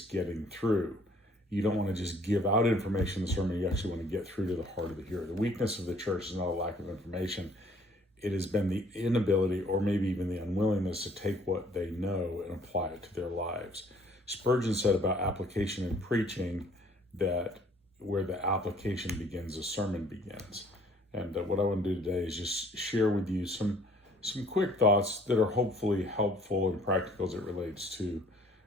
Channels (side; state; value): both; normal; correlation 0.58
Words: getting through. You don't want to just give out information in the sermon, you actually want to get through to the heart of the hearer. The weakness of the church is not a lack of information. It has been the inability, or maybe even the unwillingness, to take what they know and apply it to their lives. Spurgeon said about application in preaching that where the application begins, the sermon begins. And what I want to do today is just share with you some quick thoughts that are hopefully helpful and practical as it relates to